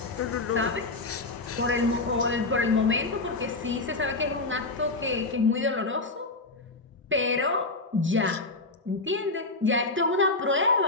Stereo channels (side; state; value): right; quieter; 3.3 dB